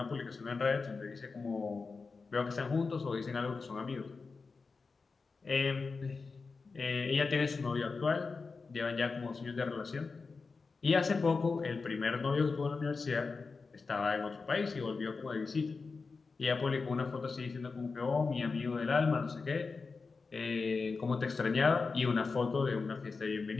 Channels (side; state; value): right; quieter; 4.4 dB